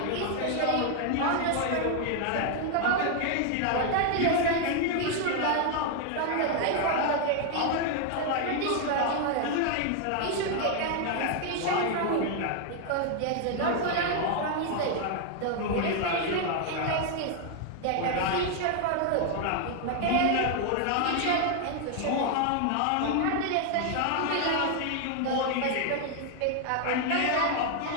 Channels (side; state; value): both; different; correlation 0.00